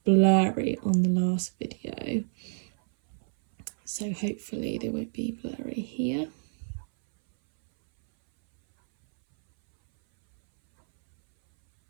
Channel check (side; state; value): left; silent; 59 dB below the other